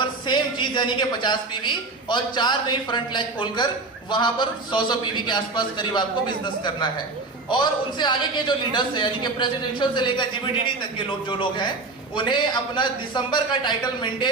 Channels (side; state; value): left; quieter; 3.6 dB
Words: सेम चीज, यानी कि 50 पीवी और 4 नई फ्रंट लेग खोलकर वहां पर 100 पीवी के आसपास करीब आपको बिजनेस करना है। और उनसे आगे के जो लीडर्स हैं, यानी कि प्रेसिडेंशियल से लेकर जीबीडीडी तक के लोग, जो लोग हैं, उन्हें अपना दिसंबर का टाइटल